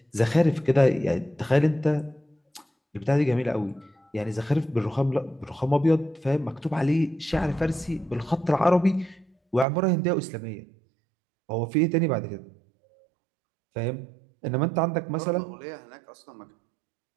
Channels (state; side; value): drops out; left; at 9.7 s